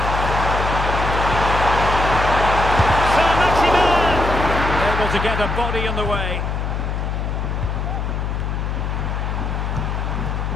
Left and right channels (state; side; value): noise; left; hum, 2 dB below the sound